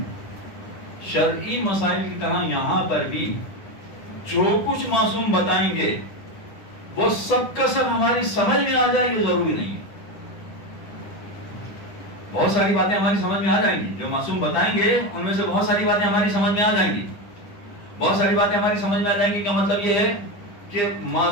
شرعی مسائل کی طرح یہاں پر بھی جو کچھ معصوم بتائیں گے وہ سب کا سب ہماری سمجھ میں آ جائے یہ ضروری نہیں ہے. بہت ساری باتیں ہماری سمجھ میں آ جائیں گی. جو معصوم بتائیں گے ان میں سے بہت ساری باتیں ہماری سمجھ میں آ جائیں گی. بہت ساری باتیں ہماری سمجھ میں آ جائیں گی کا مطلب یہ ہے کہ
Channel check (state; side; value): late; right; 9.8 ms